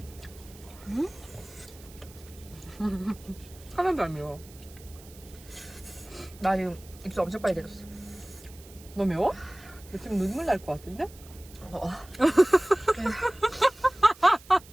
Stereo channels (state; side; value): noise; right; hiss, 22 dB below the sound